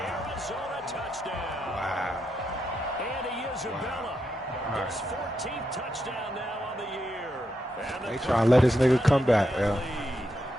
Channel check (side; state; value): both; normal; correlation 0.83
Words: touchdown. Wow. Andy Isabella. His 14th touchdown now on the year. They trying to let this nigga come back, yeah.